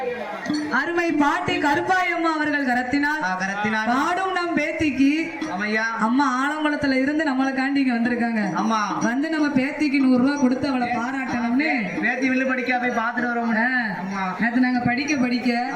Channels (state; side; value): identical; both; correlation 1.00